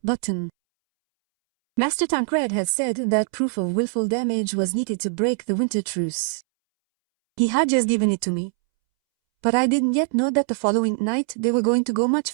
button. Master Tancred had said that proof of willful damage was needed to break the winter truce. He had just given it to me. But I didn't yet know that the following night they were going to go much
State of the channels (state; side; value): silent; left; 64 dB below the other